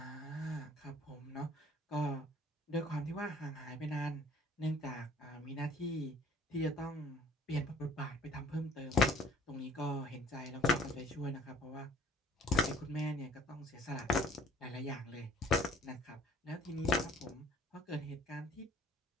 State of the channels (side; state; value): both; normal; correlation 0.54